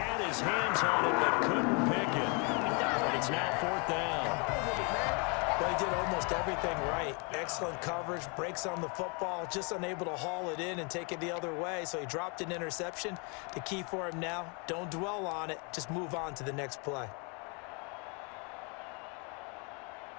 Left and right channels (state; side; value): quieter; right; 33.8 dB